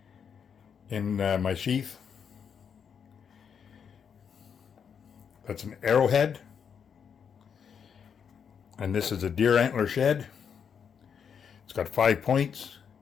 in my sheath. That's an arrowhead. And this is a deer antler shed. It's got 5 points.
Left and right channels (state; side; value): quieter; right; 7.2 dB